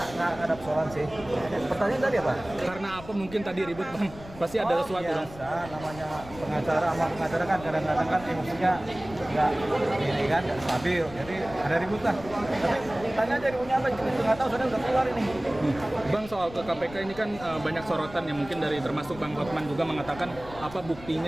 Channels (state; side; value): noise; left; rumble, 16 dB below the sound